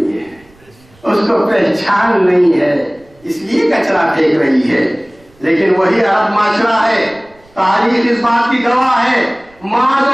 ہے، اس کو پہچان نہیں ہے، اس لیے کچرا پھینک رہی ہے۔ لیکن وہی عرب معاشرہ ہے، تاریخ اس بات کی گواہ ہے، ماذ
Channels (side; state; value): right; noise; rumble, 30 dB below the sound